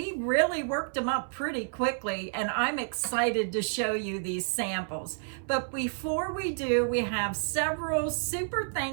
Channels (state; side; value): silent; left; 58 dB below the other